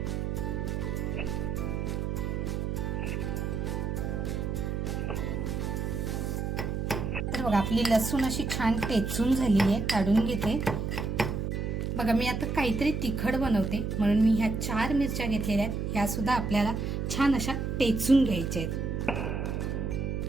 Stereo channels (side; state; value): right; noise; hum, 2 dB below the sound